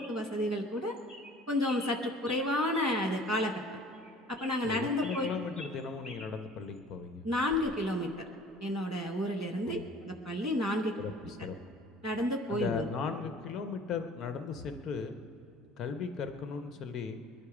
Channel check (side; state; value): both; normal; correlation 0.49